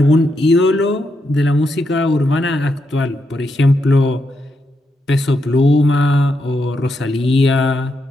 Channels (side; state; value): both; normal; correlation 0.82